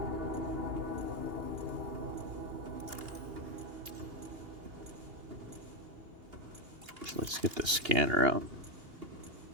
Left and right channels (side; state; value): left; late; 2.8 ms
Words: So let's get the scanner out.